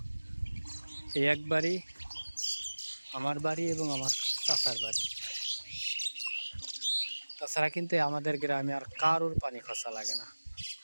এই এক বাড়ি, আমার বাড়ি এবং আমার চাচার বাড়ি। তাছাড়া কিন্তু আমাদের গ্রামে আর কারোর পানি খসা লাগে না,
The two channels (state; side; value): inverted; both; correlation -1.00